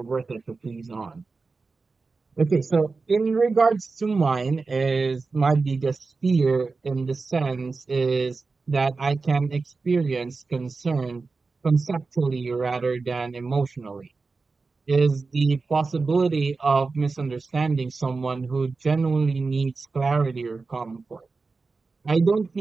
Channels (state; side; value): quieter; left; 4.1 dB